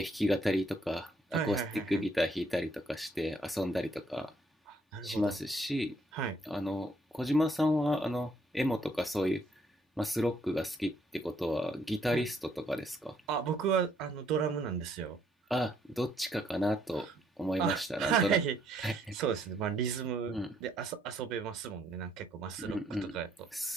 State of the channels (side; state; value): both; normal; correlation 0.69